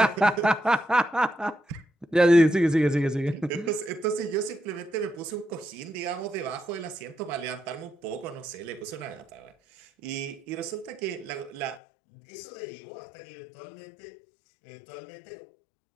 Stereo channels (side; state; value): right; drops out; at 11.8 s